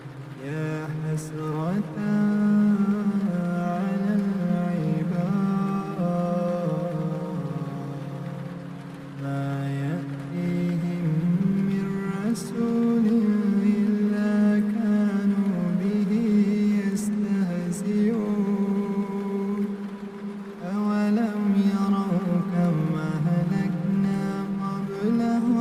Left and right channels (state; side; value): identical; both; correlation 1.00